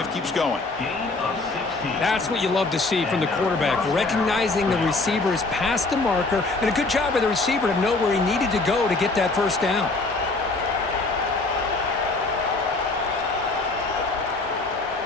keeps going. That's what you love to see from the quarterback, recognizing the receivers past the marker, and a good job by the receiver to know where he needed to go to get that first down.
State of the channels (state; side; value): quieter; right; 3.4 dB